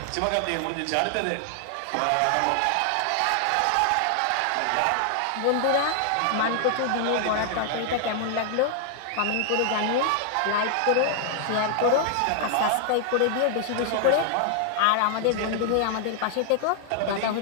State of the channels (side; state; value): both; different; correlation 0.00